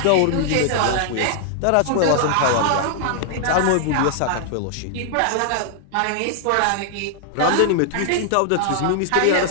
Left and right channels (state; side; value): different; both; correlation -0.01